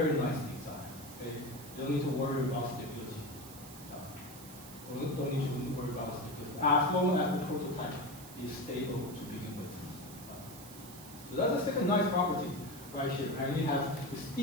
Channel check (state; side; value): noise; right; hiss, 15 dB below the sound